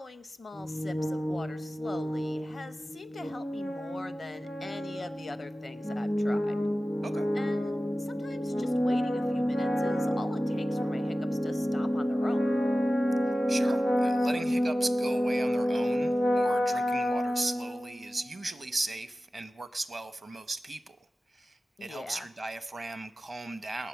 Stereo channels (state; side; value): normal; both; correlation 0.96